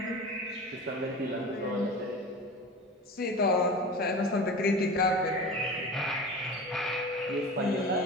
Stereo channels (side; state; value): both; normal; correlation 0.33